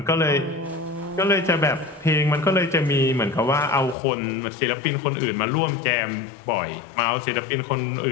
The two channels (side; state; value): right; drops out; at 4.0 s